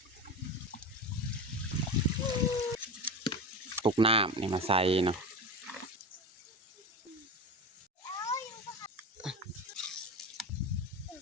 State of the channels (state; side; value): normal; both; correlation 0.24